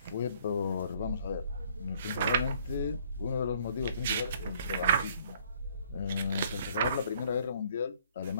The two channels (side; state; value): both; inverted; correlation -0.61